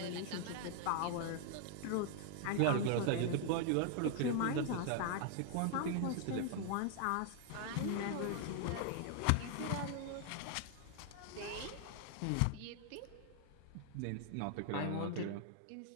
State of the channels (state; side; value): different; both; correlation 0.00